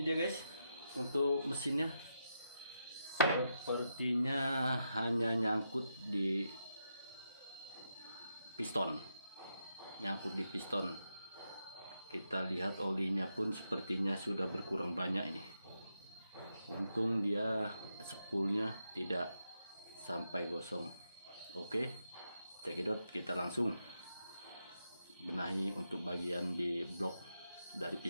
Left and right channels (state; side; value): inverted; both; correlation -0.84